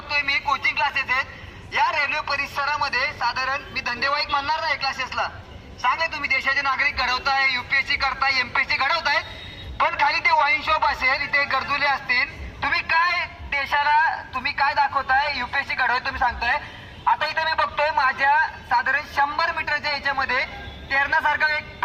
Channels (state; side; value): identical; both; correlation 1.00